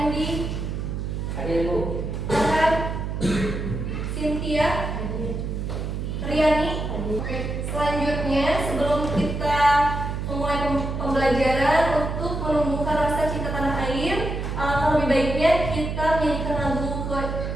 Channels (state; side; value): noise; right; hum, 4 dB below the sound